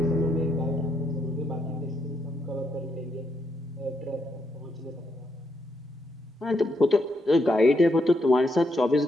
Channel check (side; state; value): both; normal; correlation 0.79